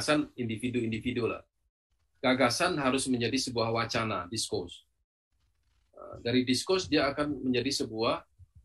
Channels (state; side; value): identical; both; correlation 1.00